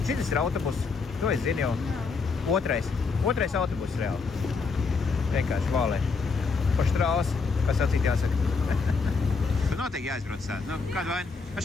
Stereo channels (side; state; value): right; quieter; 4.6 dB